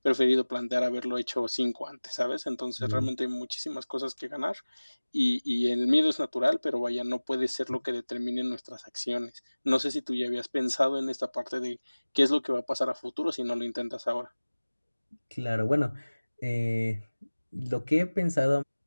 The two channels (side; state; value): both; inverted; correlation -1.00